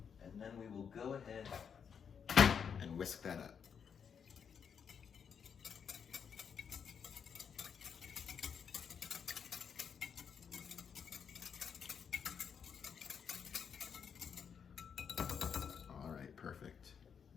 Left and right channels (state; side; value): quieter; right; 7.1 dB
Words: then we will go ahead and whisk that up. All right, perfect.